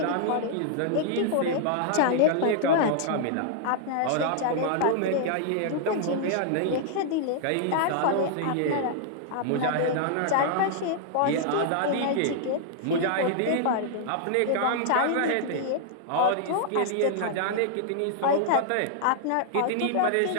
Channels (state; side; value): different; both; correlation -0.01